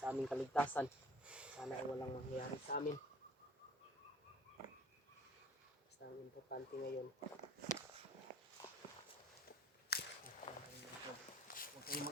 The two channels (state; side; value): normal; both; correlation 0.51